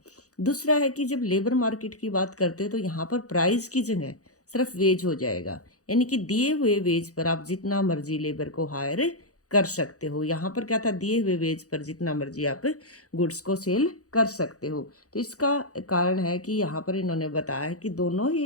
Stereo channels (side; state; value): right; late; 0.66 ms